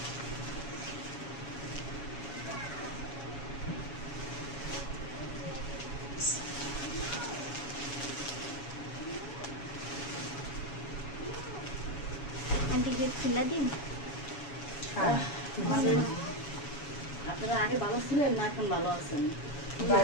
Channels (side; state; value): right; late; 7.1 ms